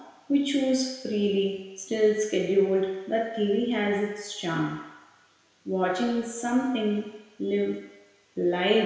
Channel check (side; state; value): both; identical; correlation 1.00